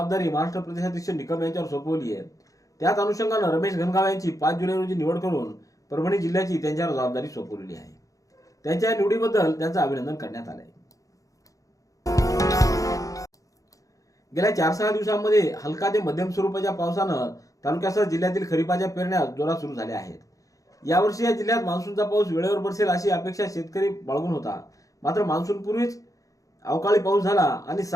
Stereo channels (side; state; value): right; late; 0.16 ms